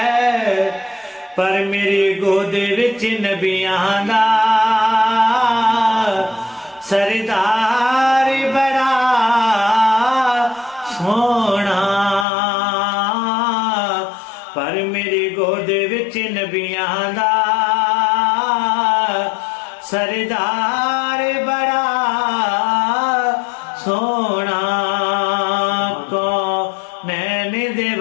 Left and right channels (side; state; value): right; drops out; at 12.2 s